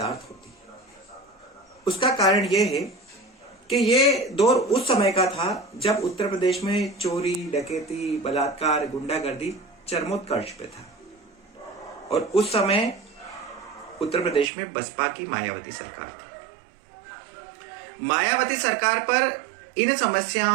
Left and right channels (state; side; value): drops out; left; at 14.5 s